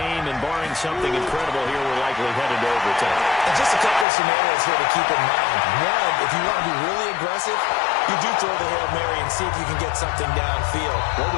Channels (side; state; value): right; drops out; at 4.0 s